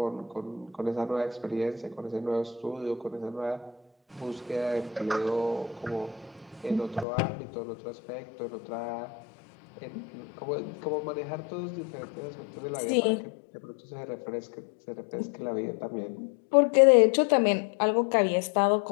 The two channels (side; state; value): right; drops out; at 7.1 s